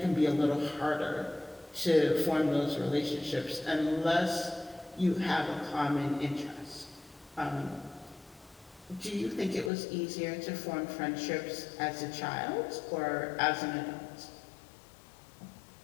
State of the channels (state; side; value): drops out; right; at 9.7 s